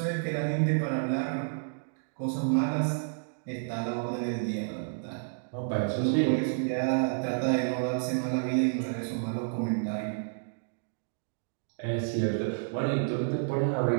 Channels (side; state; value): left; silent; digital silence